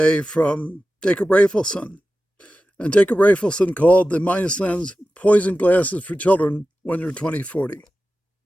from Jacob Raphaelson. And Jacob Raphaelson called the minus lens poison glasses for children when you're 2040.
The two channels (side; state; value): both; normal; correlation 0.94